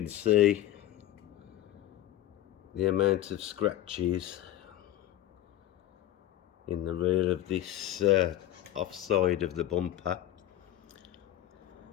see the amount of scratches in the rear of this offside of the bumper,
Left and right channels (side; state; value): right; quieter; 13.3 dB